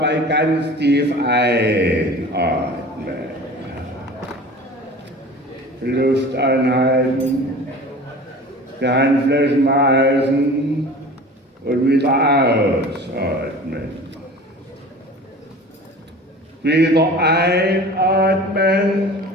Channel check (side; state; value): both; normal; correlation 0.40